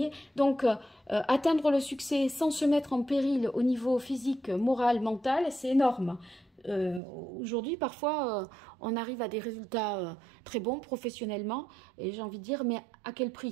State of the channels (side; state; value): left; drops out; at 7.0 s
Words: donc, atteindre le succès sans se mettre en péril au niveau physique, moral, mental, c'est énorme. Aujourd'hui, parfois, on arrive à des résultats très bons professionnellement et j'ai envie de dire, mais à quel